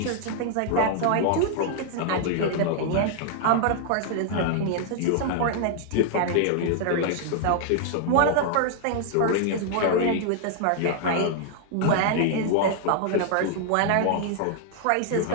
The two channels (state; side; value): different; both; correlation 0.00